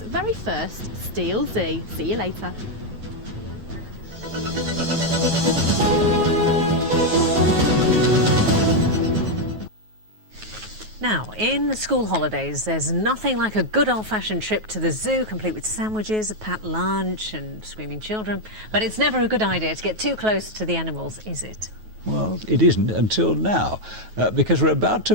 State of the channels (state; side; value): late; left; 9.3 ms